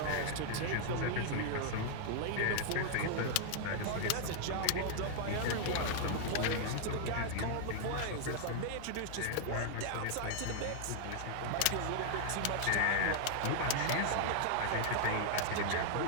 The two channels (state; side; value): different; both; correlation -0.01